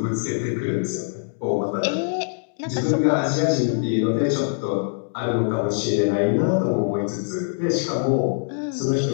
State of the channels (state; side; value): silent; right; digital silence